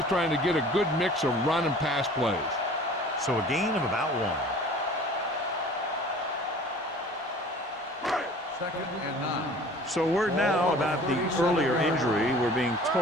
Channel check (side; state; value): both; normal; correlation 0.46